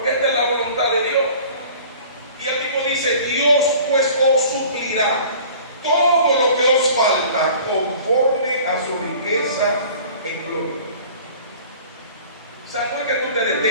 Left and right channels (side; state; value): both; inverted; correlation -0.46